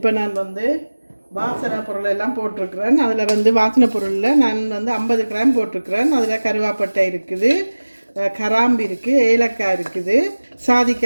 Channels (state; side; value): inverted; both; correlation -1.00